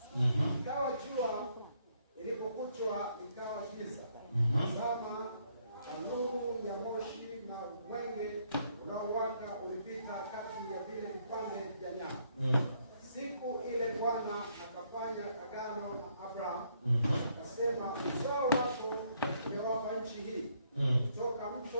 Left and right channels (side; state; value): both; inverted; correlation -0.71